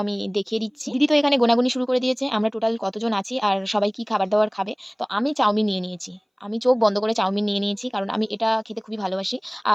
আমি দেখিয়ে দিচ্ছি। দিদি তো এখানে গোনাগুনি শুরু করে দিয়েছে। আমরা টোটাল কতজন আছি আর সবাই কি খাবার-দাবার খাবে। তো আমি চাউমিন নিয়ে নিয়েছি। আমি চোখ বন্ধ করে চাউমিন নিয়ে নিয়েছি। কারণ আমি এটা খেতে খুবই ভালোবাসি।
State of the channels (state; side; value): identical; both; correlation 1.00